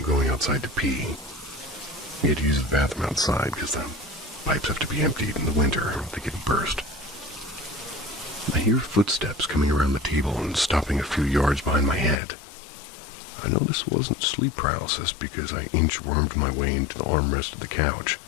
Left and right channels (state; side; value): drops out; right; at 12.2 s